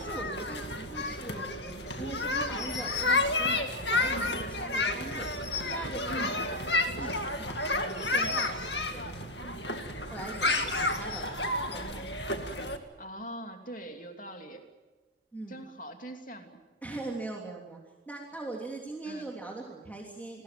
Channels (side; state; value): both; normal; correlation 0.03